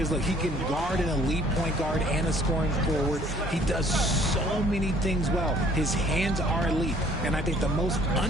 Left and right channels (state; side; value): normal; both; correlation 0.58